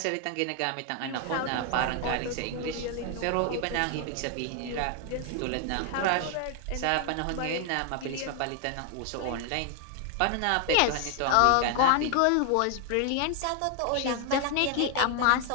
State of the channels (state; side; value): different; both; correlation 0.00